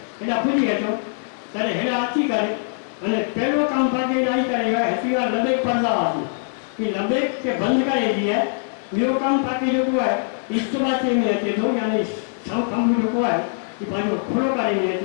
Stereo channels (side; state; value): right; silent; digital silence